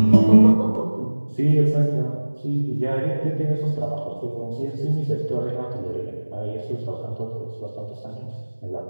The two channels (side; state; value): both; inverted; correlation -1.00